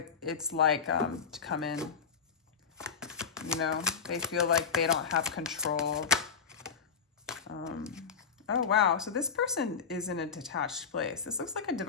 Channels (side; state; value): right; quieter; 6.2 dB